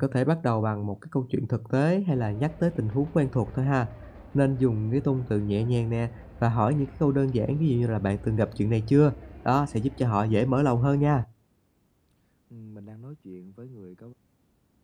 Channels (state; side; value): identical; both; correlation 1.00